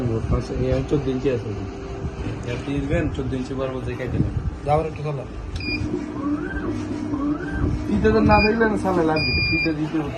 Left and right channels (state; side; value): identical; both; correlation 1.00